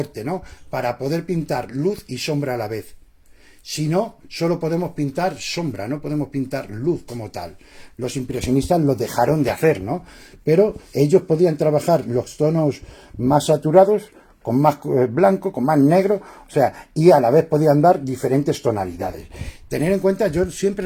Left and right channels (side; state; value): both; identical; correlation 1.00